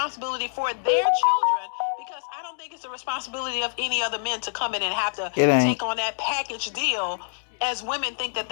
for their children, because I don't think it's the responsibility of any other men to come in and have to take on that package deal as women think that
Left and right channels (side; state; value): right; silent; digital silence